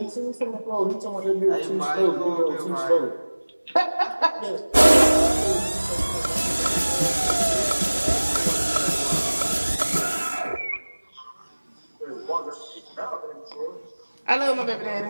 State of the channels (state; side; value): inverted; both; correlation -1.00